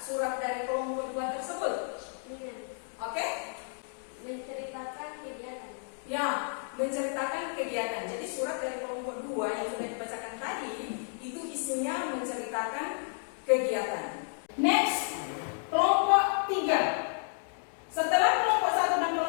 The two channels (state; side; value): silent; right; 57 dB below the other